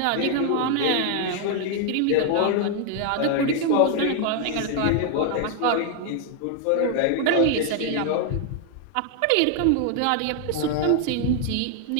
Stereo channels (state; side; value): different; both; correlation 0.00